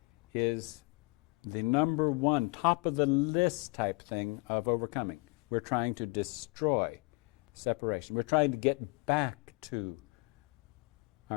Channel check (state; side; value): quieter; right; 29.2 dB